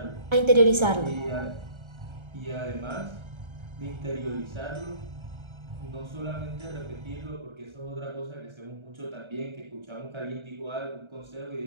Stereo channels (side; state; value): left; late; 1.3 ms